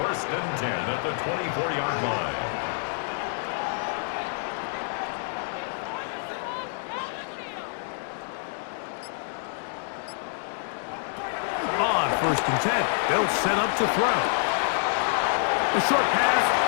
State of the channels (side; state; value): right; silent; digital silence